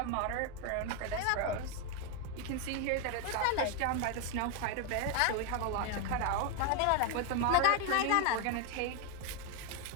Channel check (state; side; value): different; both; correlation 0.01